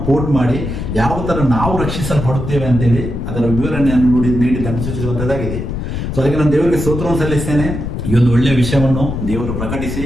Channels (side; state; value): left; noise; rumble, 4 dB below the sound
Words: ಕೋಟ್ ಮಾಡಿ ಯಾವ ತರ ನಾವು ರಕ್ಷಿಸಲ್ಪಡುತ್ತೇವೆ ಅಂತೇಳಿ ಅದರ ವಿವರಣೆಯನ್ನು ನೀಡಿದ್ದನ್ನು ಸೂಚಿಸುವಂತದ್ದಾಗಿದೆ. ಸೊ ಅದಕ್ಕೆ ನಾನು ದೇವರಿಗೆ ಸ್ತೋತ್ರವನ್ನು ಸಲ್ಲಿಸ್ತೇನೆ. ಈ ಒಂದು ಒಳ್ಳೆಯ ವಿಷಯವನ್ನು ದೇವರು ಪ್ರಕಟಿಸಿ